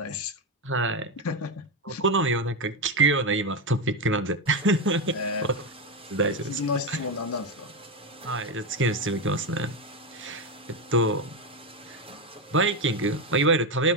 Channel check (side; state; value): both; normal; correlation 0.11